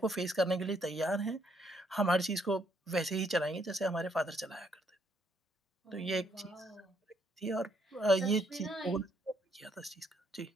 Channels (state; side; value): normal; both; correlation 0.71